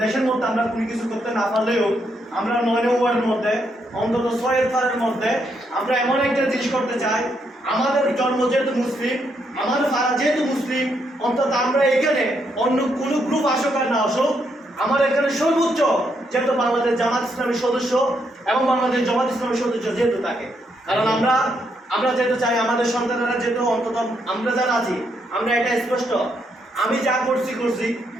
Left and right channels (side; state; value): both; normal; correlation 0.77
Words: দেশের মধ্যে আমরা কোনো কিছু করতে না পারলেও আমরা 9 ওয়ার্ডের মধ্যে অন্তত 6 ফারের মধ্যে আমরা এমন একটা জিনিস করতে চাই। আমাদের জন্ম যেহেতু মুসলিম, আমাদের ফারা যেহেতু মুসলিম, অন্তত আমরা এখানে অন্য কোনো গ্রুপ আসুক আর না আসুক, আমার এখানে সর্বোচ্চ যেহেতু বাংলাদেশ জামাত ইসলামের সদস্য এবং বাংলাদেশ জামাত ইসলামের সদস্য যেহেতু থাকে, কারণ আমরা যেহেতু চাই আমাদের সন্তানেরা যেহেতু অন্তত আমরা যারা আছি আমরা এটা স্পষ্ট, আমি যা করছি